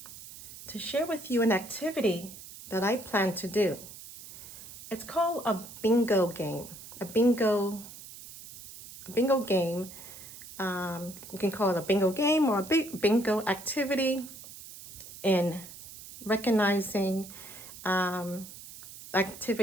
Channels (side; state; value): right; noise; hiss, 15 dB below the sound